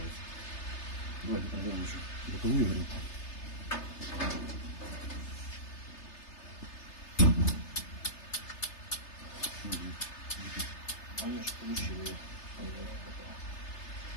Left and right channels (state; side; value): late; right; 3.3 ms